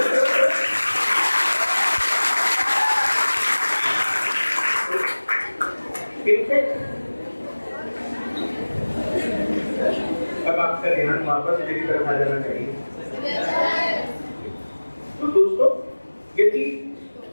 अब आपका ध्यान वापस मेरी तरफ आ जाना चाहिए। तो दोस्तों यदि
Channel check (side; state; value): both; inverted; correlation -1.00